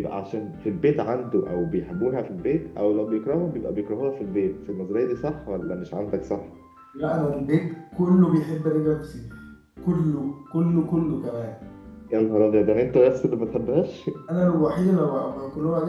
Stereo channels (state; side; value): identical; both; correlation 1.00